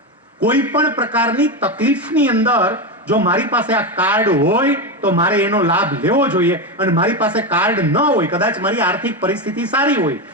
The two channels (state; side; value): normal; both; correlation 0.14